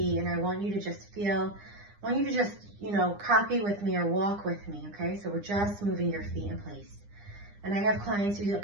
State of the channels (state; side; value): late; left; 9.9 ms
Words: and I want you to just feel, I want you to just, copy with me or walk with me, okay? So we're just moving your feet in place. And I have clients who